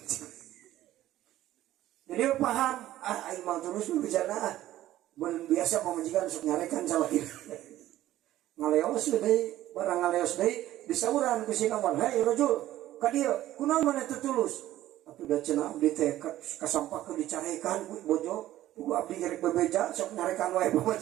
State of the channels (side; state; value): left; quieter; 14.0 dB